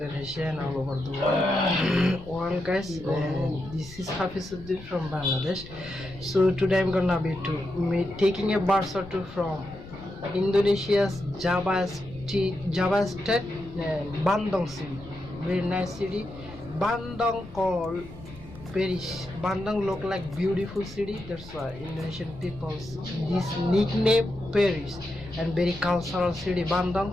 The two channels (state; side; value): noise; left; rumble, 18 dB below the sound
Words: and all over the world, guys. This is Hafiz from Bangladesh. So today I'm gonna be taking a bus or two from Indonesia's Java State, Bandung city. Very nice city. Bandung called Paris. Bandung look like beautiful city. That's why Indonesian people this nickname Paris. And very cultural city Bandung.